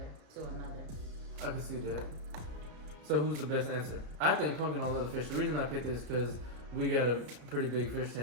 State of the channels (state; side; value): late; left; 33 ms